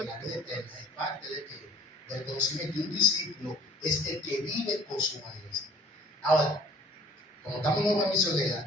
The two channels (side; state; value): both; normal; correlation 0.54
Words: la vida eterna es parte del conocimiento. Y un discípulo es el que vive con su maestro. Ahora, como estamos en una